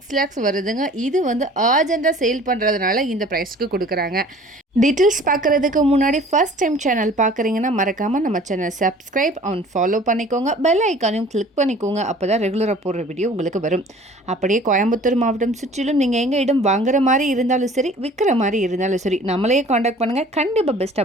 lakhs வருதுங்க. இது வந்து அர்ஜென்ட்டாக சேல் பண்ணுறதுனால இந்த ப்ரைஸ்க்கு கொடுக்குறாங்க. டீட்டெயில்ஸ் பார்க்குறதுக்கு முன்னாடி ஃபர்ஸ்ட் டைம் சேனல் பார்க்குறீங்கன்னா மறக்காமல் நம்ம சேனல் சப்ஸ்கிரைப் அண்ட் ஃபாலோ பண்ணிக்கோங்க. பெல் ஐக்கானையும் கிளிக் பண்ணிக்கோங்க. அப்போ தான் ரெகுலராக போடுற வீடியோ உங்களுக்கு வரும். அப்படியே கோயம்புத்தூர் மாவட்டம் சுற்றிலும் நீங்கள் எங்கள் இடம் வாங்குற மாதிரி இருந்தாலும் சரி, விற்கிற மாதிரி இருந்தாலும் சரி, நம்மளையே காண்டாக்ட் பண்ணுங்கள். கண்டிப்பாக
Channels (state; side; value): normal; both; correlation 0.49